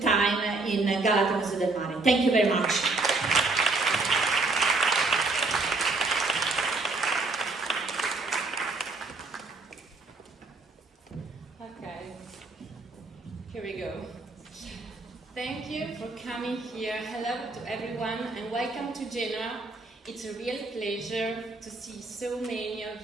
time in Galata Museo del Mare. Thank you very much. Okay, here we go. Thank you for coming here. Hello to everyone and welcome to Genoa. It's a real pleasure to see so many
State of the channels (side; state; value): left; quieter; 3.5 dB